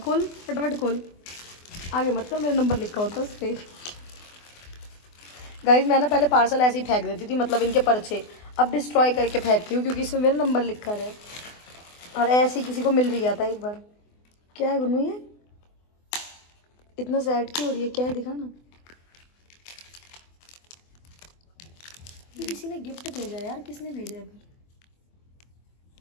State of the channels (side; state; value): right; late; 24 ms